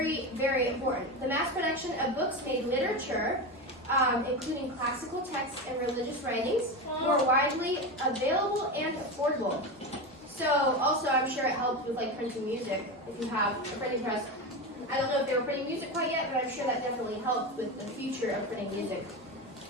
very important. The mass production of books made literature, including classical texts and religious writings, more widely available and affordable. So also, I'm sure it helped with like printing music if you have a printing press. I don't know if they were printing music quite yet, but I'm sure that definitely helped with the future of printing music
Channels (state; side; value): normal; both; correlation 0.20